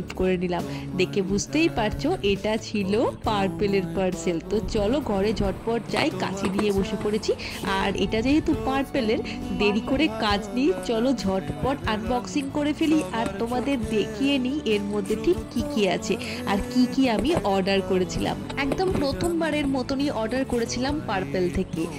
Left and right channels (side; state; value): both; identical; correlation 1.00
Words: করে নিলাম। দেখে বুঝতেই পারছো এটা ছিল পার্পেলের পার্সেল। তো চলো ঘরে ঝটপট যাই, কাছে নিয়ে বসে পড়েছি। আর এটা যেহেতু পার্পেলের, দেরি করে কাজ নেই, চলো ঝটপট আনবক্সিং করে ফেলি আর তোমাদের দেখিয়ে নিই এর মধ্যে ঠিক কি কি আছে আর কি কি আমি অর্ডার করেছিলাম। একদম প্রথমবারের মতনই অর্ডার করেছিলাম পার্পেল থেকে,